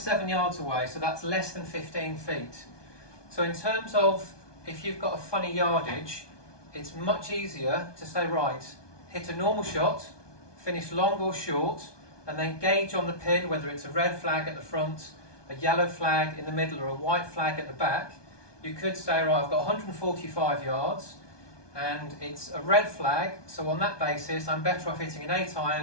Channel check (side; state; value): right; late; 1.2 ms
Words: yards away, so that's less than 15 feet. So in terms of if you've got a funny yardage, it's much easier to say, right, hit a normal shot, finish long or short, and then gauge on the pin whether it's a red flag at the front, a yellow flag in the middle, or a white flag at the back. You could say, right, I've got 145 yards, and it's a red flag, so on that basis I'm better off hitting an